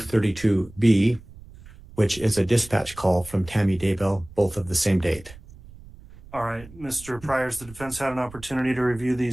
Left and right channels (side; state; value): right; noise; rumble, 20 dB below the sound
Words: which is a dispatch call from Tammy Daybell, both of the same date. All right, Mr. Priors, the defense had an opportunity to review